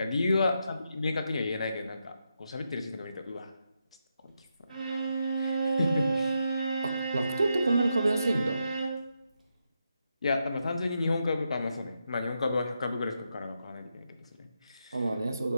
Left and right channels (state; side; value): inverted; both; correlation -0.84